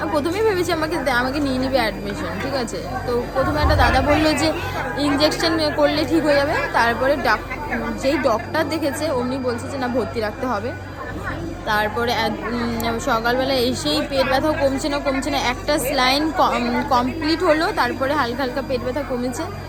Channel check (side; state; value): both; identical; correlation 1.00